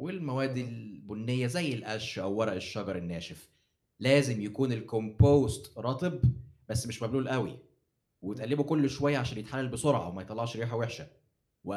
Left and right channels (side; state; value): both; identical; correlation 1.00